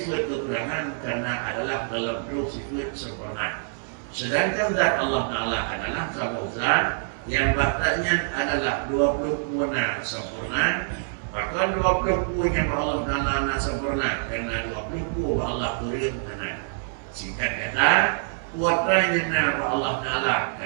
kekurangan karena adalah dalam bentuk sifat sempurna. Sedangkan zat Allah Ta'ala adalah satu zat yang baktanya adalah 20 puana sempurna. Bahkan 20 yang Allah Ta'ala sempurna karena 20 Allah kurim hana. Singkat kata, kuatranya Allah Ta'ala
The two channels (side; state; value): left; silent; 61 dB below the other